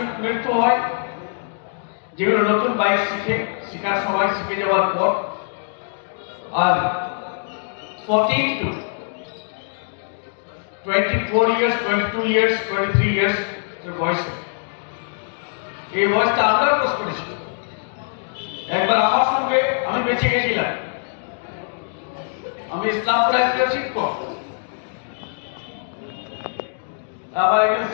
মৃত্যু হয়? যেগুলো নতুন বাইক শেখার সময় শিখে যাওয়ার পর, আর 14 to 24 years, 22 years, 23 years বয়সে, এই বয়সটা আমরা ক্রস করেছি। একবার আমার সঙ্গে আমি বেঁচে গেছিলাম, আমি ইসলামপুর একজন শিক্ষক, আমার একজন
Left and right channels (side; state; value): right; silent; digital silence